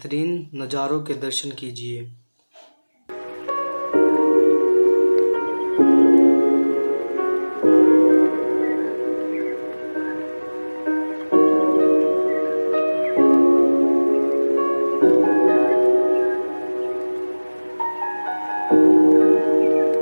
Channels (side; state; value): both; inverted; correlation -1.00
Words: नज़ारों के दर्शन कीजिए।